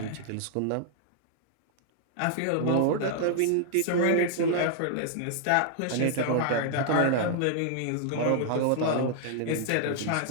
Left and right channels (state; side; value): different; both; correlation 0.00